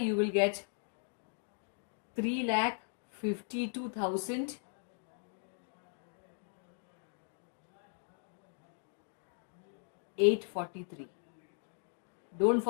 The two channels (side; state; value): right; silent; digital silence